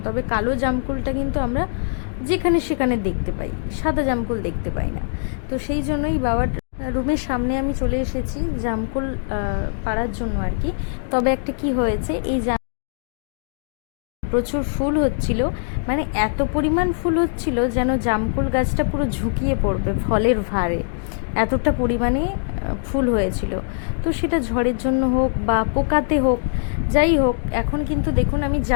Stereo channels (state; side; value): silent; right; digital silence